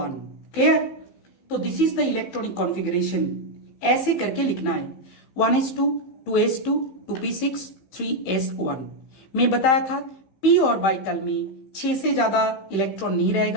क्लियर। तो this is the electronic configuration, ऐसे करके लिखना है 1s2 2s2 2p6 3s1। मैं बताया था p ऑर्बिटल में 6 से ज्यादा इलेक्ट्रॉन नहीं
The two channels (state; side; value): late; right; 15 ms